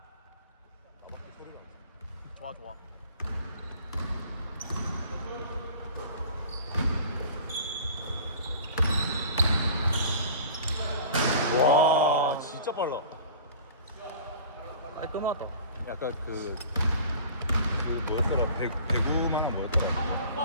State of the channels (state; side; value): inverted; both; correlation -0.43